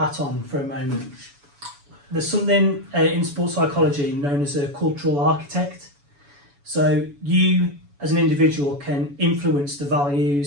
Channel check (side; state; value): left; late; 7.0 ms